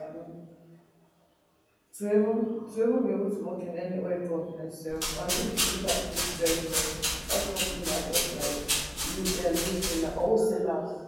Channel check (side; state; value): both; identical; correlation 1.00